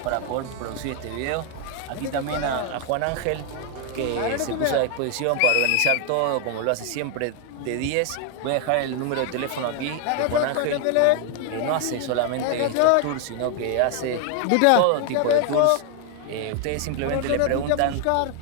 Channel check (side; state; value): both; different; correlation 0.00